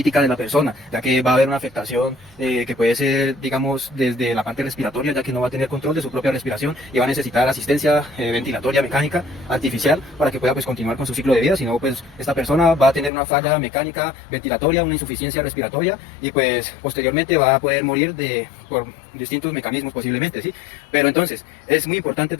de la persona, ya que va a haber una afectación que puede ser, digamos, desde la parte respiratoria, ya que no va a tener control de su propia respiración y va a necesitar asistencia ventilatoria mecánica artificial para que pueda pues continuar con su ciclo de vida. Si no, pues esta persona va a tener una falla mecánica ventilatoria, una insuficiencia respiratoria, y pues posteriormente va a poder morir por distintos mecanismos posiblemente, ¿sí? Pero entonces es muy importante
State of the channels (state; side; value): drops out; right; at 13.1 s